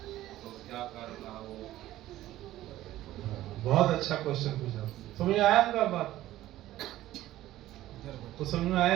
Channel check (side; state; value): left; quieter; 14.8 dB